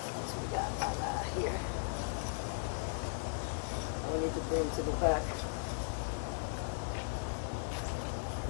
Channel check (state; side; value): silent; right; digital silence